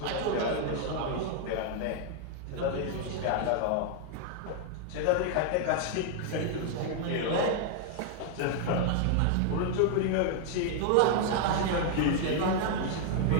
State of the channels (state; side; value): different; both; correlation 0.00